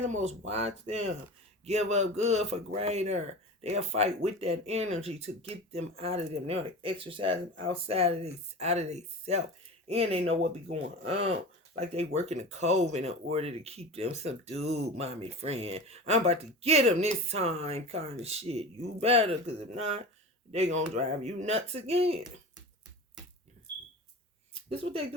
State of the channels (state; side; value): normal; both; correlation 0.32